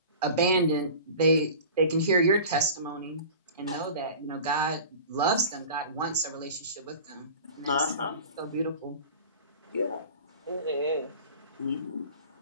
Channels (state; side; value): inverted; both; correlation -0.39